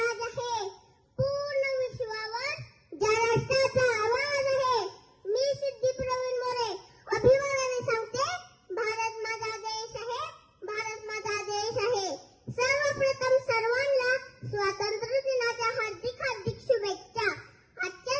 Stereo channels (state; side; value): identical; both; correlation 1.00